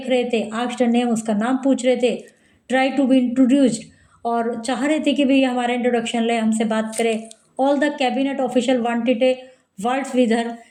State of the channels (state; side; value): identical; both; correlation 1.00